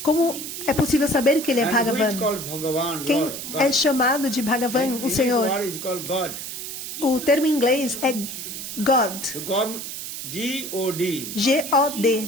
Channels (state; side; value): noise; right; hiss, 7 dB below the sound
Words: Como é possível saber que ele é And who is Bhagavan? called Bhagavan? Quem Lord, God. é chamado de Bhagavan, o His Senhor? word is called God. O termo em inglês é God. So God, G-O-D. G-O-D.